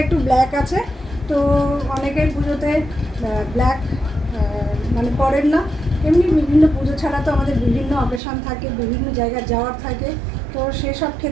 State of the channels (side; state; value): left; drops out; at 8.2 s